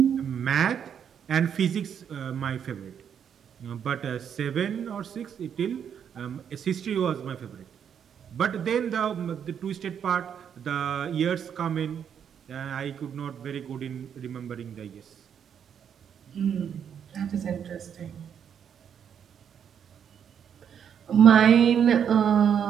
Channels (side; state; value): left; quieter; 8.2 dB